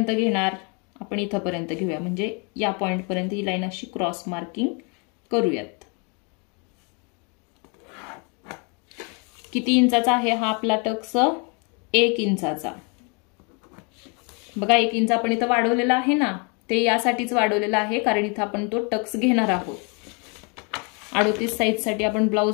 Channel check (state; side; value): quieter; right; 34.0 dB